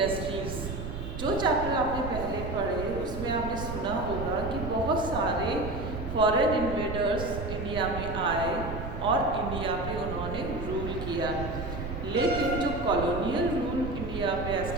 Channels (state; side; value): noise; right; rumble, 6 dB below the sound